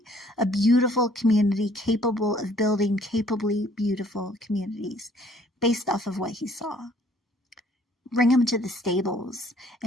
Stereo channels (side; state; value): both; normal; correlation 0.60